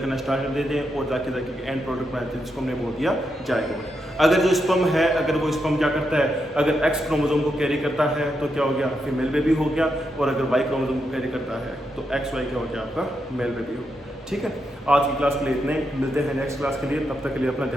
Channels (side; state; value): both; normal; correlation 0.83